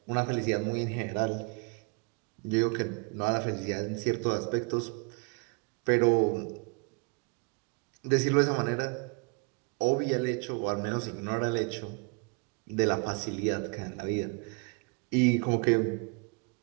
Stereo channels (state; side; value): quieter; left; 33.2 dB